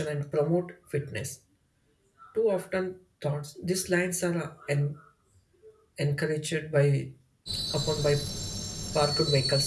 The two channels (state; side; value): identical; both; correlation 1.00